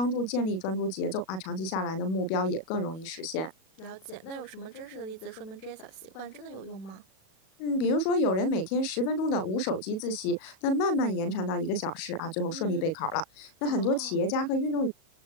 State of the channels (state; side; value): late; right; 37 ms